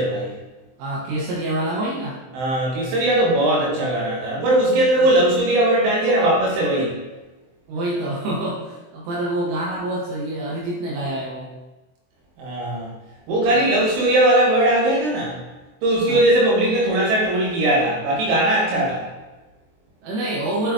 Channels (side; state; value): left; late; 23 ms